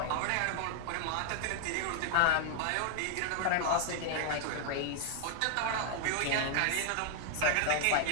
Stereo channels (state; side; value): different; both; correlation 0.00